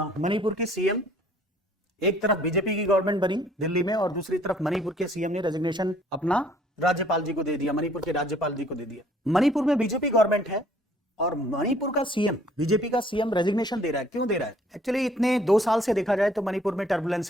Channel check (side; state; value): both; normal; correlation 0.59